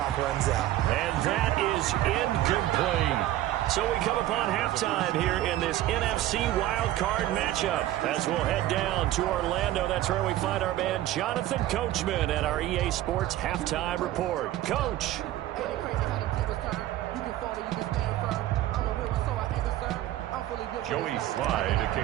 runs out. And that is incomplete. So we come upon halftime here in this NFC wildcard matchup as we'll head down to Orlando. That's where we find our man Jonathan Coachman at our EA Sports Halftime Report. Coach. Joey Slye to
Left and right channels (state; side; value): quieter; left; 14.2 dB